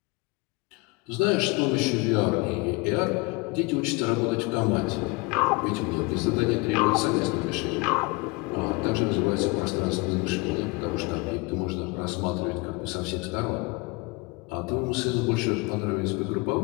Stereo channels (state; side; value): quieter; right; 26.1 dB